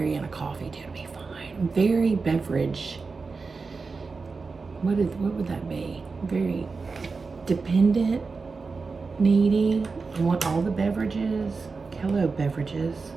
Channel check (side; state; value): left; quieter; 4.4 dB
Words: in a coffee tea, it'll be fine. Very beverage. What would that be? Very dependent, needy. I want all the beverages. Hello, beverages.